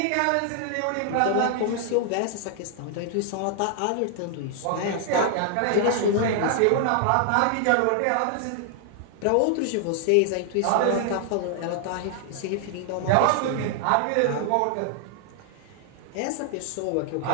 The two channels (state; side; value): different; both; correlation 0.00